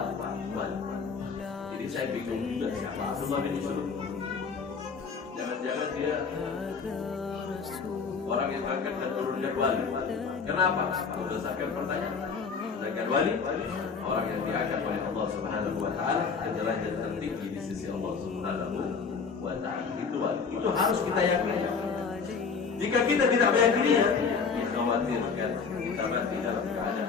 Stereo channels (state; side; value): quieter; right; 5.4 dB